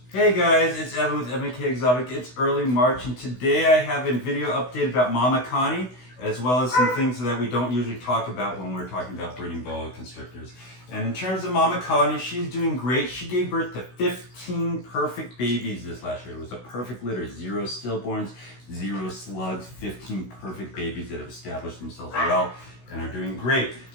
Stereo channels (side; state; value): right; late; 16 ms